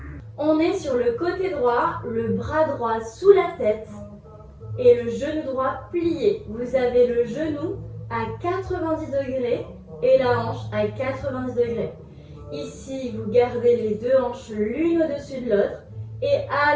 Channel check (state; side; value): identical; both; correlation 1.00